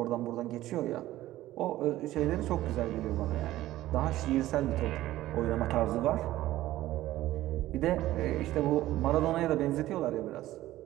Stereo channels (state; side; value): quieter; left; 15.3 dB